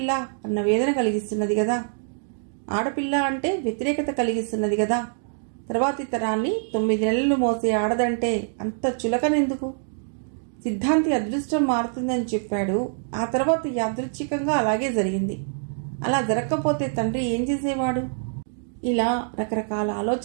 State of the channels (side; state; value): left; silent; digital silence